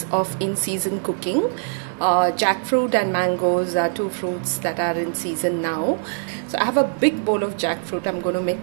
of in-season cooking, jackfruit and mangoes are two fruits that are in season now. So I have a big bowl of jackfruit. I'm going to make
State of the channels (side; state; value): left; silent; 56 dB below the other